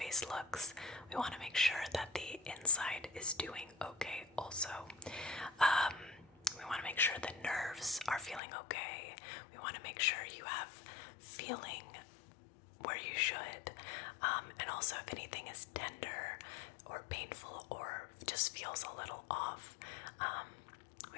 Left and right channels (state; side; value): drops out; right; at 8.4 s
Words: looks, we want to make sure that the inside is doing okay also. We want to make sure the nerves are feeling okay. We want to make sure you have feeling where you should, and also if anything is tender or painful or just feels a little off,